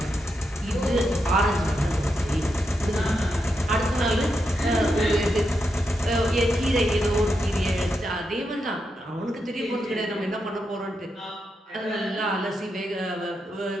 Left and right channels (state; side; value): normal; both; correlation 0.84